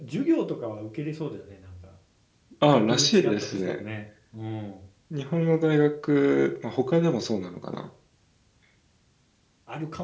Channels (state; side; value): identical; both; correlation 1.00